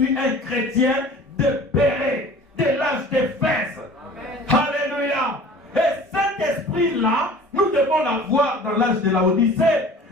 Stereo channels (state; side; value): normal; both; correlation 0.45